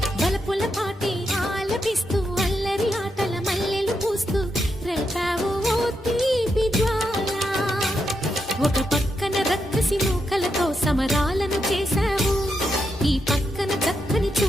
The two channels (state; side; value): normal; both; correlation 0.83